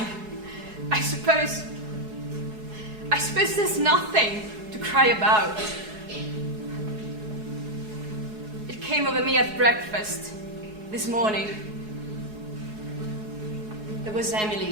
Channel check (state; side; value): late; left; 4.7 ms